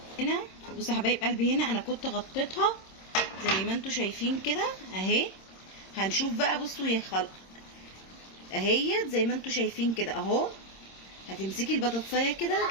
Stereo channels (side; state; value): right; late; 26 ms